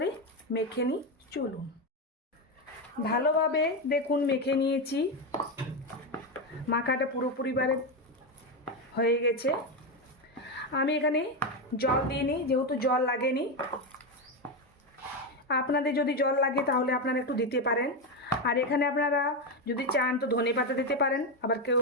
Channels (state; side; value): normal; both; correlation 0.11